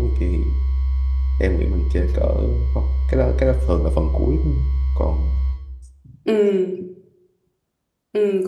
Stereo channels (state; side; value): identical; both; correlation 1.00